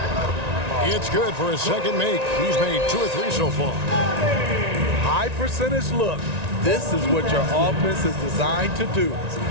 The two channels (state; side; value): late; left; 1.9 ms